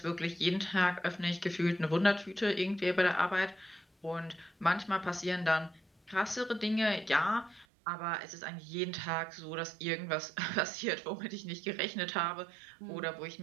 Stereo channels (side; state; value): left; drops out; at 7.7 s